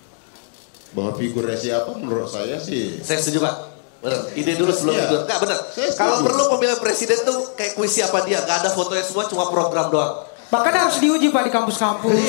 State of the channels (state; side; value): silent; right; 63 dB below the other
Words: Bahwa figurnya siapa menurut saya sih. Saya setuju Pak. Benar. Ide dulu sebelum figur. Enggak benar. Kalau perlu pemilihan presiden tuh kayak kuis siapa dia. Gak ada fotonya semua, cuma program doang. Bahkan harus diuji Pak di kampus-kampus.